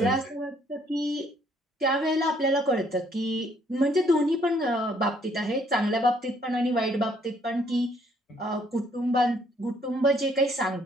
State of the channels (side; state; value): both; normal; correlation 0.66